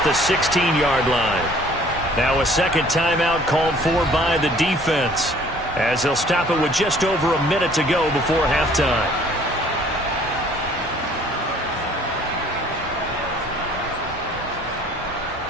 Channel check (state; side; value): normal; both; correlation 0.55